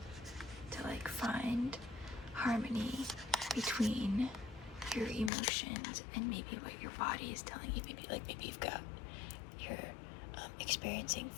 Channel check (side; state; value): right; drops out; at 5.3 s